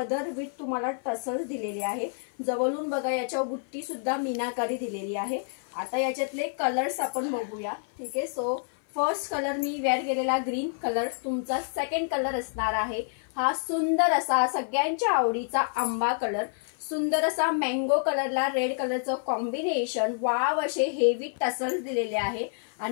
विथ तुम्हाला टसल्स दिलेले आहे। जवळून बघा, याच्यावर बुट्टी सुद्धा मीनाकारी दिलेली आहे। आता याच्यातले कलर्स आपण बघूया। ठीक आहे, सो फर्स्ट कलर मी वेअर केलेला ग्रीन कलर, तुमचा सेकंड कलर असणार आहे हा सुंदर असा सगळ्यांच्या आवडीचा आंबा कलर। सुंदर असा मँगो कलरला रेड कलरचं कॉम्बिनेशन, वाव असे हेवी टसल्स दिलेले आहे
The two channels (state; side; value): silent; right; 55 dB below the other